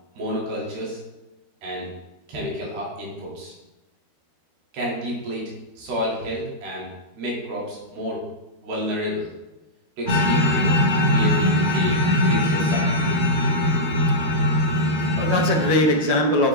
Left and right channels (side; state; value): left; late; 12 ms